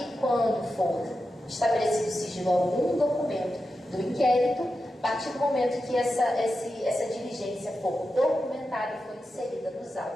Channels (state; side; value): normal; both; correlation 0.90